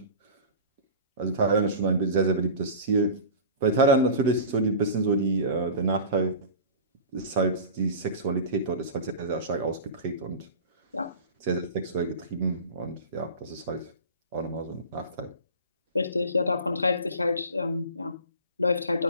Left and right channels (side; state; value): both; inverted; correlation -0.34